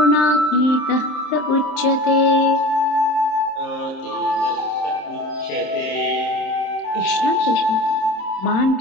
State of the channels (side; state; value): right; late; 26 ms